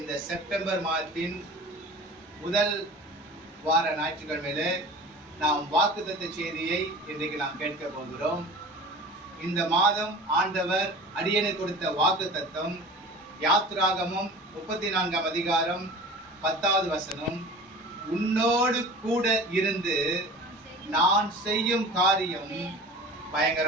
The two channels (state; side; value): normal; both; correlation 0.39